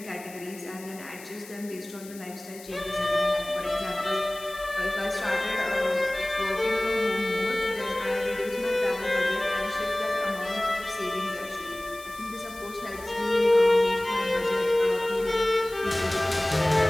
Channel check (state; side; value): noise; left; hiss, 18 dB below the sound